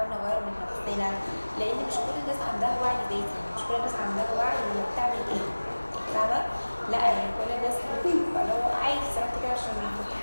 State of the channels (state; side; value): inverted; both; correlation -1.00